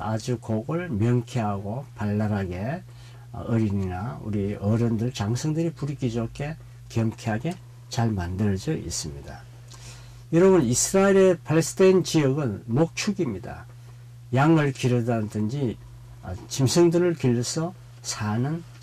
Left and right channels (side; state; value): both; identical; correlation 1.00